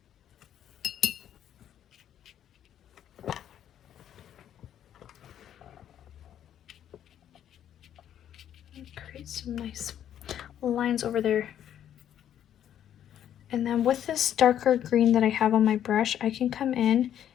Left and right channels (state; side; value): quieter; right; 10.4 dB